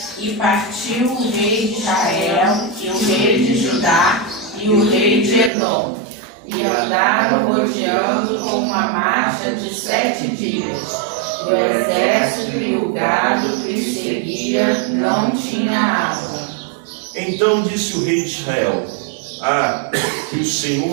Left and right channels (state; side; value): drops out; left; at 5.5 s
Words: E partiu o rei de Israel, e o rei de Judá, e o rei de Edom, e andaram rodeando com uma marcha de 7 dias. O exército e o gado que lhe seguia não tinha água. Então disse o rei de Israel: que o